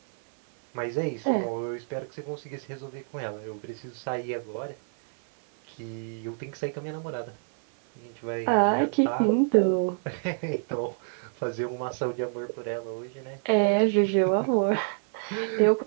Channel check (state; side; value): silent; left; 56 dB below the other